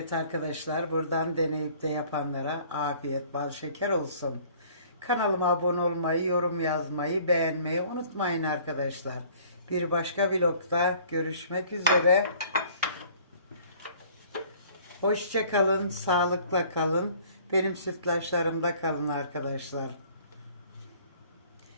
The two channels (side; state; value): both; inverted; correlation -0.54